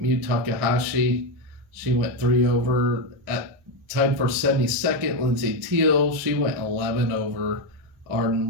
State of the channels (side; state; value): left; late; 1.6 ms